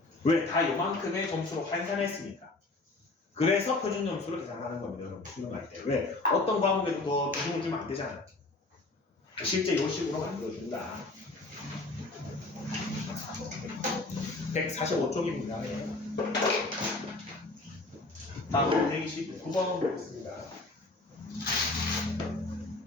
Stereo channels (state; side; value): quieter; right; 3.1 dB